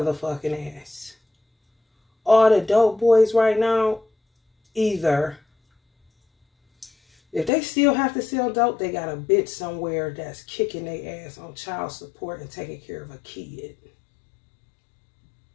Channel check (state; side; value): drops out; right; at 7.5 s